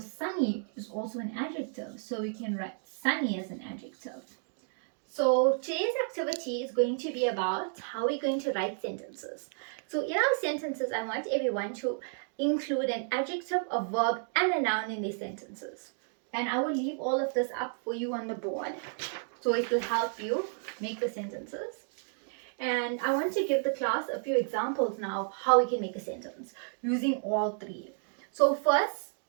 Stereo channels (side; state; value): left; silent; 57 dB below the other